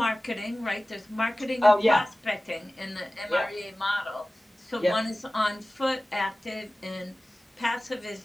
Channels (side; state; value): both; normal; correlation 0.97